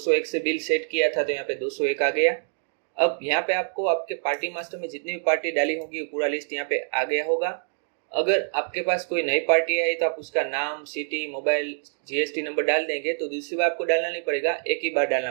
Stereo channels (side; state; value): left; silent; digital silence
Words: से बिल सेट किया था, तो यहाँ पे 201 आ गया। अब यहाँ पे आपको आपके पार्टी मास्टर में जितनी भी पार्टी डाली होगी पूरा लिस्ट यहाँ पे आ गया होगा। अगर आपके पास कोई नई पार्टी है तो आप उसका नाम, सिटी, मोबाइल, GST नंबर डाल देंगे, तो दूसरी बार आपको डालना नहीं पड़ेगा, एक ही बार डालना